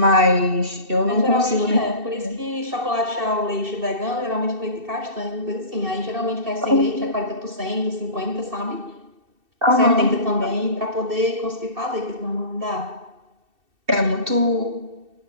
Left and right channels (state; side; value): late; left; 2.7 ms